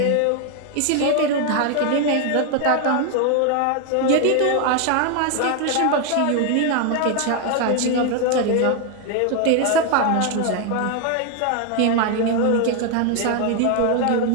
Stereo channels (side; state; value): both; different; correlation 0.01